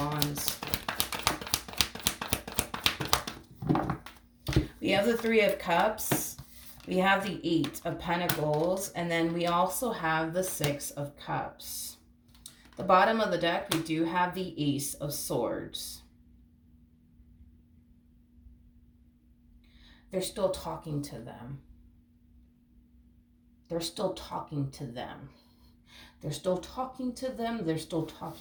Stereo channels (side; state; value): both; identical; correlation 1.00